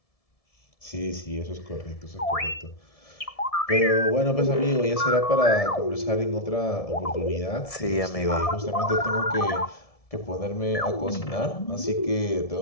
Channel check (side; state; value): right; late; 1.7 ms